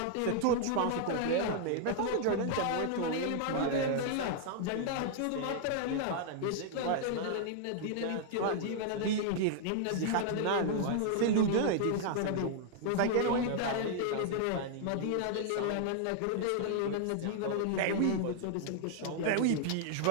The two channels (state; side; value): different; both; correlation -0.01